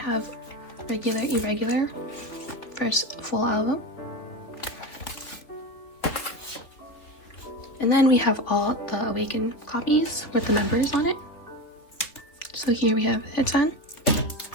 Regular Irregular, first full album. And then we have all the Awaken copies with the members on it. So here we have Haechan,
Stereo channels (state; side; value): late; right; 3.2 ms